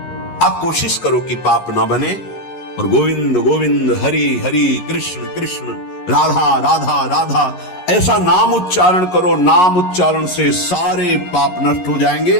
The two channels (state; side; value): late; right; 11 ms